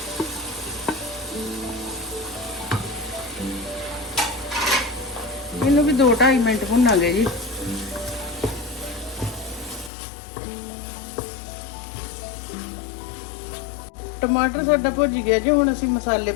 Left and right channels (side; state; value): right; drops out; at 9.9 s